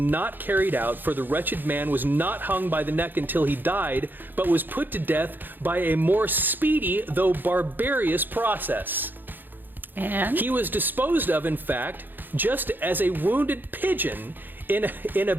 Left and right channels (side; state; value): left; late; 0.091 ms